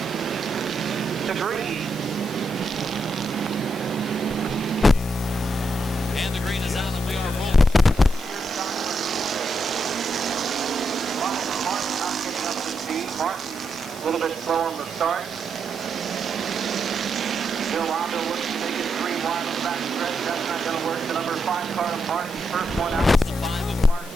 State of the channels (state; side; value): noise; left; hiss, 16 dB below the sound